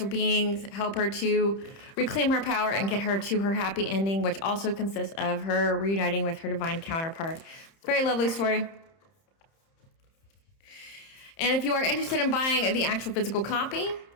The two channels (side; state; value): right; late; 30 ms